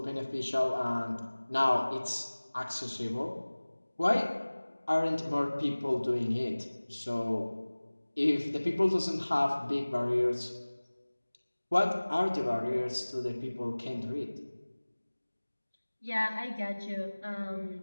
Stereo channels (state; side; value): inverted; both; correlation -1.00